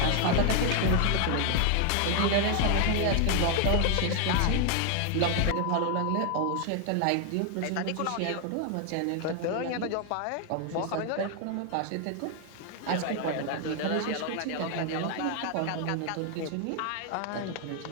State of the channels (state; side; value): different; both; correlation 0.00